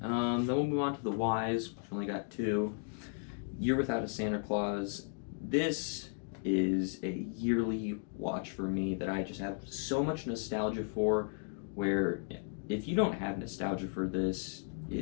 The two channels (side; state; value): right; silent; 54 dB below the other